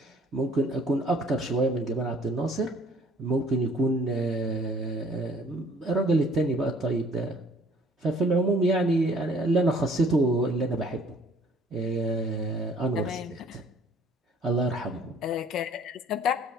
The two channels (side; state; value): both; normal; correlation 0.57